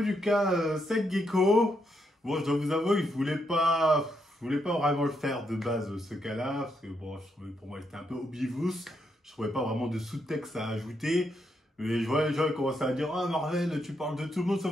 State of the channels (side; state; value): both; normal; correlation 0.79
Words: du cas Sek Gecko. Bon, je dois vous avouer, je voulais pas vraiment le faire de base ce cas-là, parce que bon, je trouvais pour moi c'était un peu obvious. Je trouvais pas vraiment de sous-texte à ajouter. Mais je vois les gens commencer à dire « Ah Marvel, tu parles de tout le monde